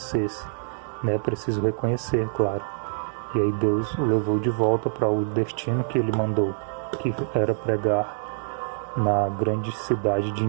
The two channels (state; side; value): silent; left; digital silence